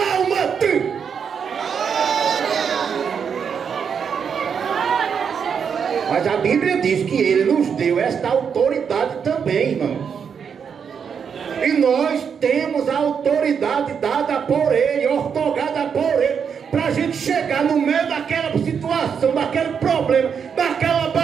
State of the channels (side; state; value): left; quieter; 6.9 dB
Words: Mas a Bíblia diz que ele nos deu esta autoridade também, irmãos. E nós temos a autoridade dada por ele, ortogada por ele, para a gente chegar no meio daquela situação, daquele problema, daquela